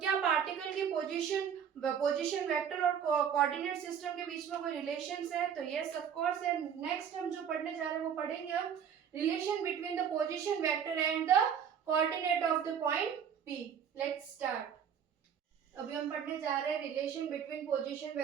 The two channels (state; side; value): quieter; left; 8.0 dB